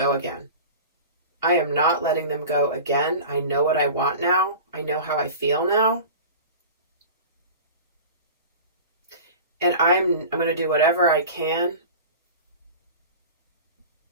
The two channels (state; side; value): inverted; both; correlation -0.35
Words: again. I am not letting them go again. I know what I want now. I know how I feel now. And I'm going to do whatever I can.